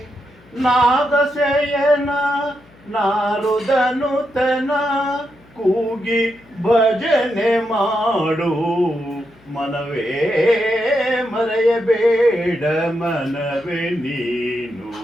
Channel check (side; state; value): left; noise; hum, 28 dB below the sound